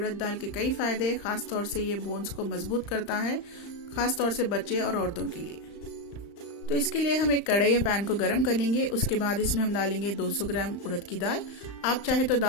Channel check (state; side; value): late; right; 35 ms